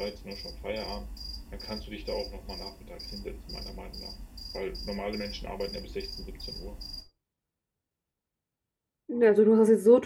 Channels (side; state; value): both; identical; correlation 1.00